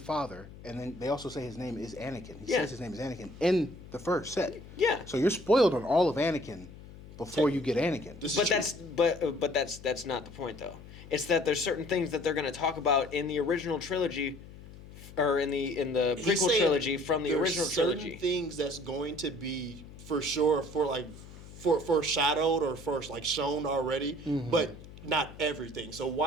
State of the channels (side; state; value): left; noise; hum, 17 dB below the sound